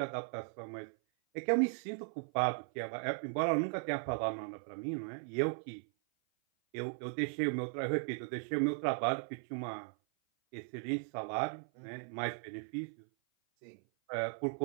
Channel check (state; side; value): silent; left; 53 dB below the other